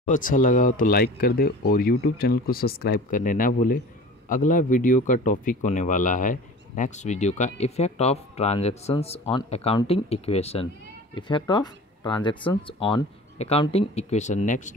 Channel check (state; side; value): normal; both; correlation 0.40